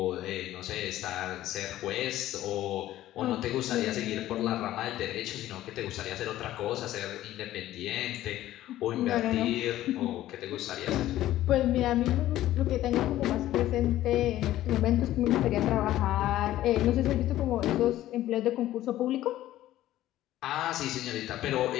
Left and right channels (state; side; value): quieter; right; 14.2 dB